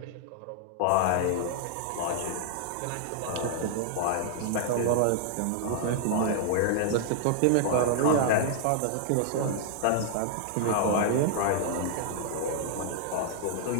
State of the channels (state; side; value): different; both; correlation -0.01